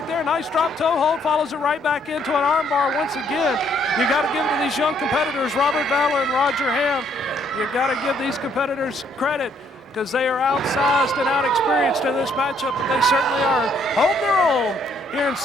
there. Nice drop toe hold, follows it right back into an armbar once again. You got to give it to these young competitors, Robert Valor and Roger Hamm. You got to give these competitors credit because they are outsized and outexperienced in this matchup, but they certainly are holding their own here in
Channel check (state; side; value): normal; both; correlation 0.68